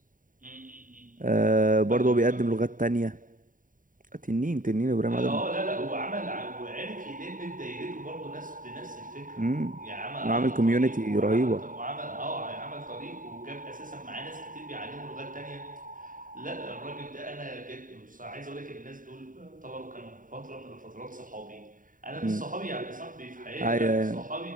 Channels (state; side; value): late; left; 0.39 ms